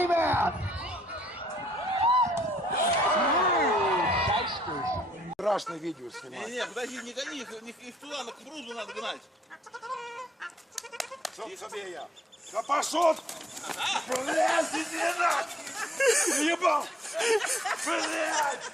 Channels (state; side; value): normal; both; correlation 0.67